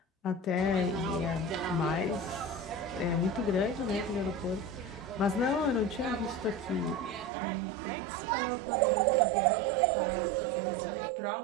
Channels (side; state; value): left; drops out; at 7.3 s